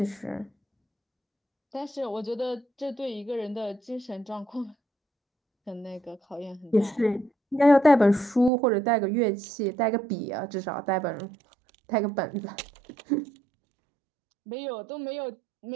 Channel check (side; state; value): left; drops out; at 8.5 s